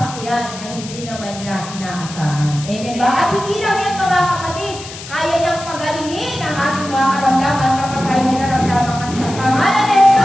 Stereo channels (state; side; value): noise; left; hiss, 13 dB below the sound